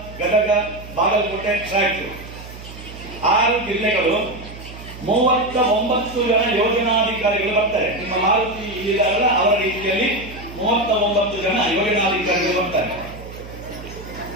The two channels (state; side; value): noise; right; hum, 14 dB below the sound